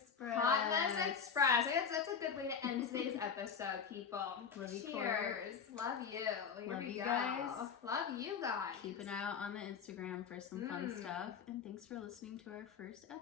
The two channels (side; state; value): right; quieter; 6.5 dB